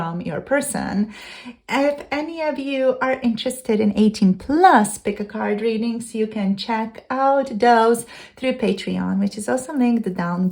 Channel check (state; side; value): identical; both; correlation 1.00